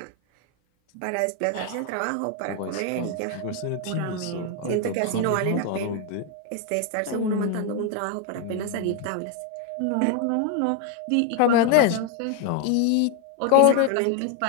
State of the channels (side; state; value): both; different; correlation 0.01